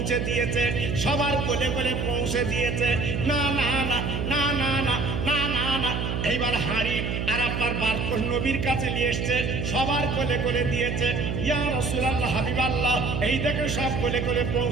দিয়েছে, সবার কোলে কোলে পৌঁছে দিয়েছে। না না না না না না না না না, এইবার হাঁড়ি আর আপনার বারকোশ নবীর কাছে নিয়ে এসছে, সবার কোলে কোলে দিয়েছে। ইয়া রাসূলুল্লাহ, হাবিবাল্লাহ, এই দেখে সব কোলে কোলে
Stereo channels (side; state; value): right; noise; hum, 2 dB below the sound